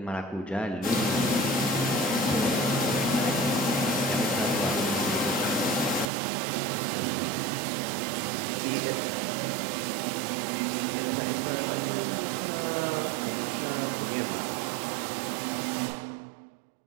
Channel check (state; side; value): drops out; left; at 6.1 s